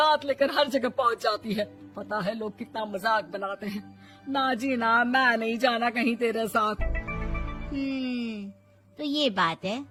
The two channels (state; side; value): identical; both; correlation 1.00